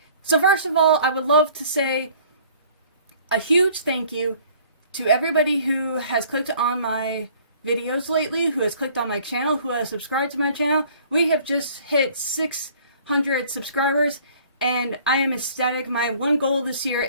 So first of all, I would love to say a huge thank you to everybody who has clicked on my videos lately, who has clicked on my channel, who has subscribed to my channel. We have just hit 600 subscribers, and I am ecstatic. My one goal this year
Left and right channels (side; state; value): both; inverted; correlation -0.54